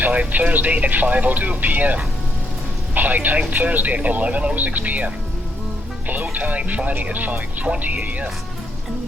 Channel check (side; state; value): both; normal; correlation 0.76